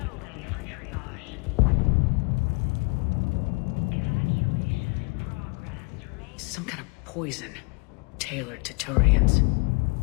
bay for triage. Evacuation in progress. Remain Some kind of poison tailored to Turians.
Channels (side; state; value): right; quieter; 31.0 dB